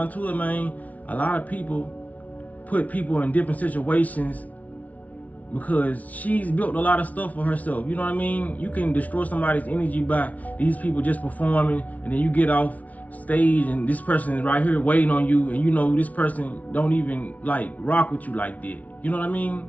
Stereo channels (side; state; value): right; late; 0.071 ms